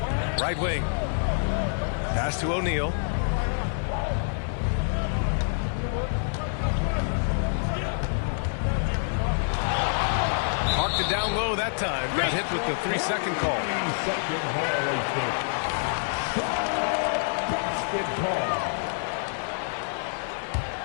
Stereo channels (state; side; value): silent; right; digital silence